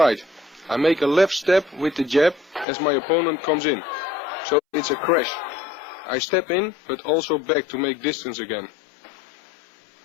I make a left step with the jab as my opponent comes in. So it's a crash. I step in but also back to make distance again.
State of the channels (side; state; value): right; drops out; at 2.7 s